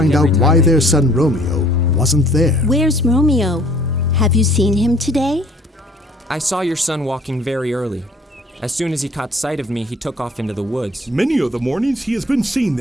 out why their son Romeo wasn't there. Where's Romeo? Have you seen him today? I saw your son walking very early. As soon as he caught sight of me, he took off into the woods. Many of the mornings he has been seen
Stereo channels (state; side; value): normal; both; correlation 0.55